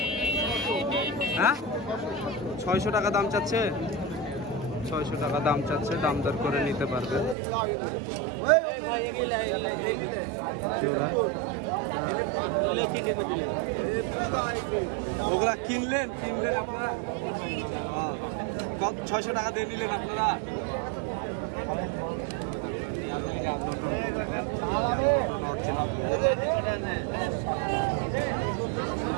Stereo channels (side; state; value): left; drops out; at 7.4 s